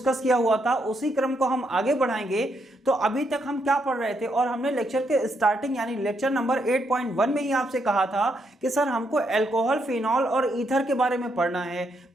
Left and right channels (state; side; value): normal; both; correlation 0.77